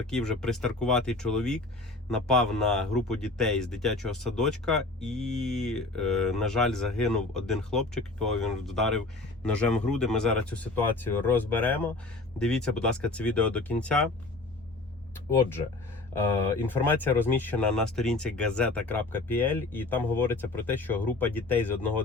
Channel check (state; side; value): quieter; right; 3.2 dB